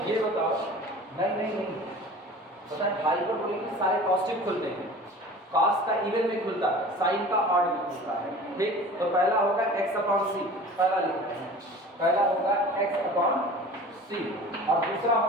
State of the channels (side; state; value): both; normal; correlation 0.41